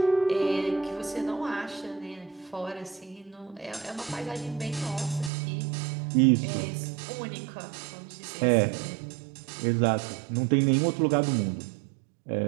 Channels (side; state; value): left; drops out; at 5.3 s